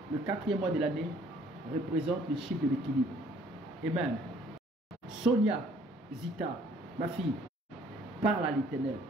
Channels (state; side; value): normal; both; correlation 0.59